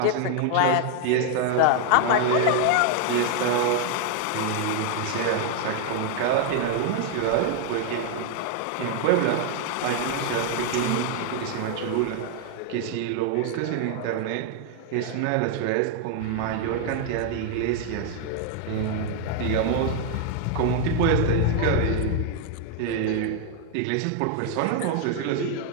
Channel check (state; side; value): different; both; correlation 0.00